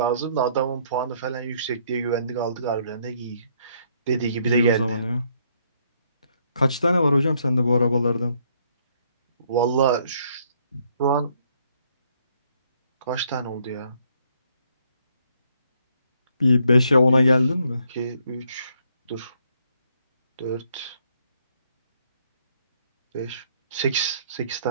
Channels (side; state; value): both; inverted; correlation -0.69